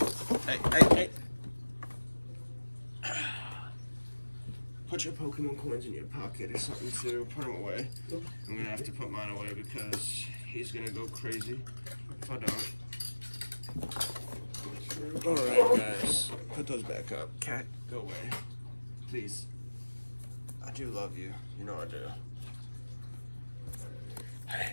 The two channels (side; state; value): both; inverted; correlation -1.00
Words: Hey! Put your Pokemon coins in your pocket or something too. Put them away. I'm gonna have to put mine away because he's gonna go crazy if I don't. Alright guys, put those back up. Cat, go away. Please. I do love you. You know I do.